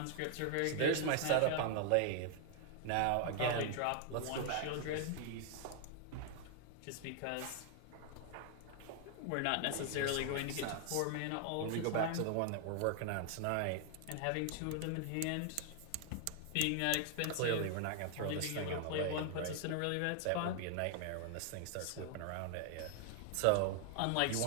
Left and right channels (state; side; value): different; both; correlation 0.00